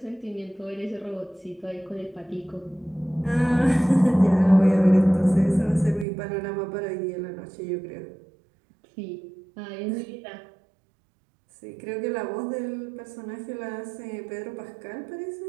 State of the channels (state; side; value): drops out; left; at 6.1 s